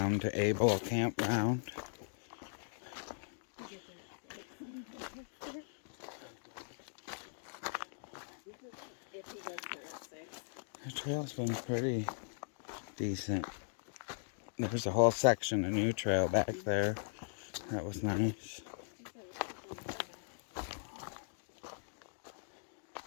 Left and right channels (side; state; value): right; silent; digital silence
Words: to Able Campground. The trail's been pretty decent. There's a whole section of new trail back there. That was nice.